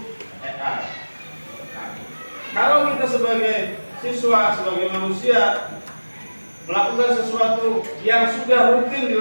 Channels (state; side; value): inverted; both; correlation -1.00